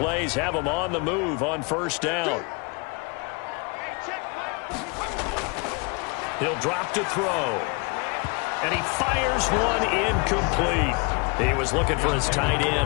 have them on the move on 1st down. He'll drop to throw. And he fires one incomplete. He was looking for his tight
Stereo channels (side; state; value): right; quieter; 29.8 dB